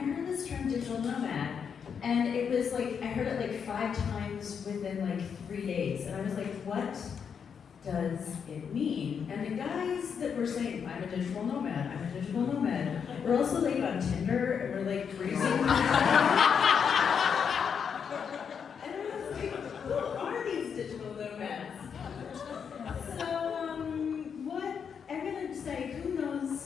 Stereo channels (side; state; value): right; quieter; 6.9 dB